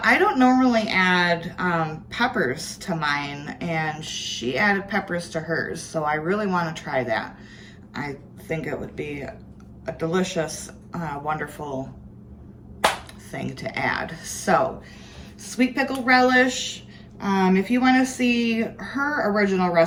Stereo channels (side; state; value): both; identical; correlation 1.00